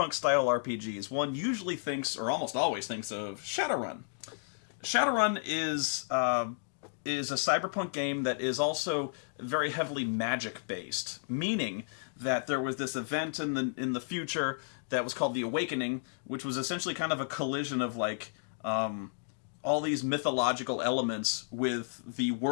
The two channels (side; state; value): right; silent; digital silence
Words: RPGs, one usually thinks, or almost always thinks, of Shadowrun. Shadowrun is a cyberpunk game that is also very heavily magic-based, meaning that there was this event in the future that was called the Awakening, which was essentially kind of a collision of like all these mythological elements with the